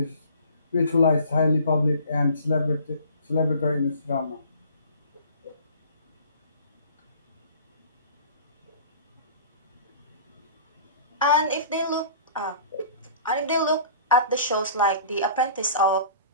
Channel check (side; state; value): both; inverted; correlation -0.46